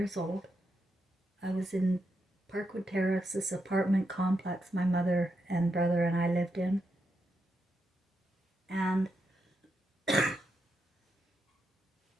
old. I was in Parkwood Terrace, this apartment complex my mother and brother and I lived in. And the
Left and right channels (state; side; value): normal; both; correlation 0.84